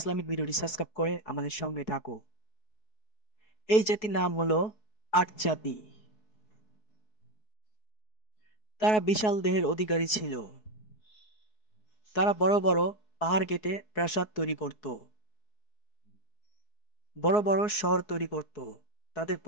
ভিডিওটি সাবস্ক্রাইব করে আমাদের সঙ্গে থাকো। এই জাতির নাম হলো আট জাতি। তারা বিশাল দেহের অধিকারী ছিল। তারা বড় বড় পাহাড় কেটে প্রাসাদ তৈরি করত, বড় বড় শহর তৈরি করত। তাদের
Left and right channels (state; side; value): late; right; 4.7 ms